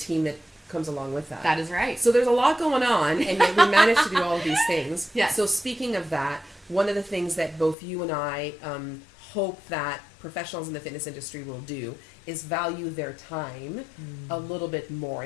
that comes along with that. That is right. So there's a lot going on, and yet we managed to do all of these things. Yes. So speaking of that, one of the things that both you and I hope that professionals in the fitness industry will do is value their time a little bit more.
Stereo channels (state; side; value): drops out; right; at 7.8 s